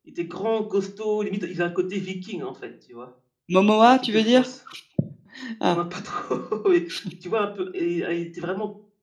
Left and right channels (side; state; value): both; identical; correlation 1.00